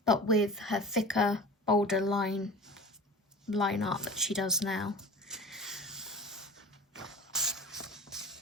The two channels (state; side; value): normal; both; correlation 0.37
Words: but with her thicker, bolder line art that she does now.